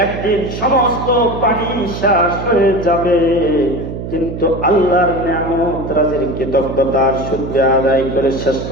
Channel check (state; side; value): noise; right; hum, 7 dB below the sound